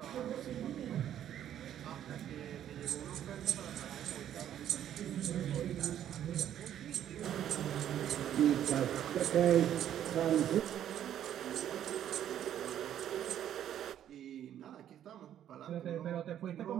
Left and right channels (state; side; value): quieter; left; 10.7 dB